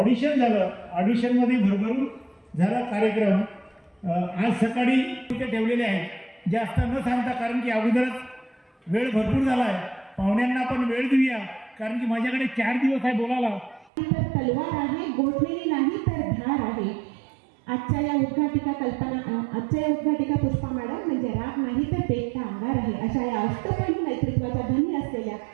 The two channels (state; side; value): drops out; left; at 13.9 s